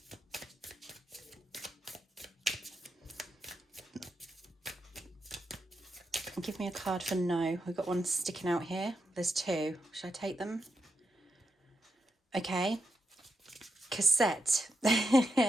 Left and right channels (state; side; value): normal; both; correlation 0.85